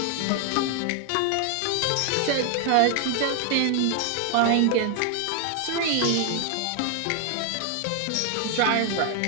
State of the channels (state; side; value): different; both; correlation 0.00